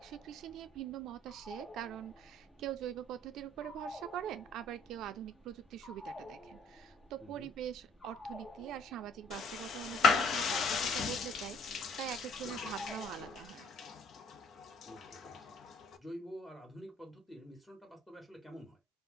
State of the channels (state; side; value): normal; both; correlation 0.60